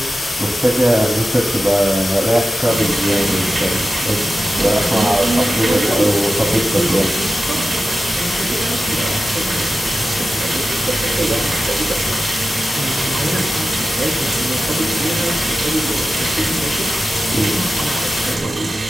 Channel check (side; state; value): both; normal; correlation 0.93